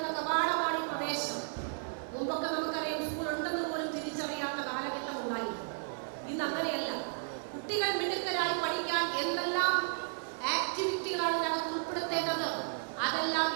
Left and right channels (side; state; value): left; silent; 55 dB below the other